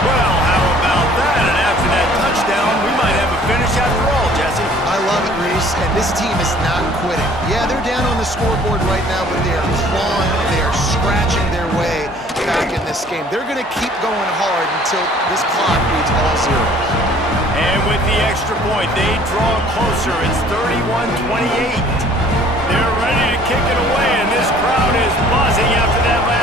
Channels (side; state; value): both; normal; correlation 0.54